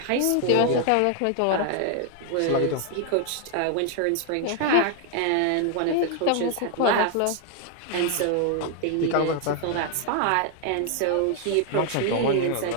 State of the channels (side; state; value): both; different; correlation 0.00